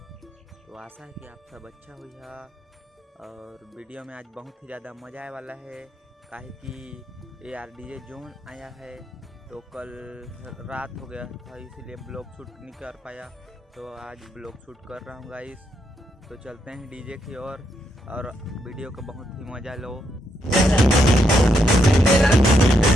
तो आशा है कि आप सब अच्छा हुई है और वीडियो में आज बहुत ही ज़्यादा मज़ा आने वाला है, काहे कि AR DJ जोन आया है। तो कल रात हो गया था इसीलिए ब्लॉग शूट नहीं कर पाया, तो आज ब्लॉग शूट कर रहा हूँ गाइस। तो चलते हैं डीजे की ओर और वीडियो का बहुत ही मज़ा लो।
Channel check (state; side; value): normal; both; correlation 0.79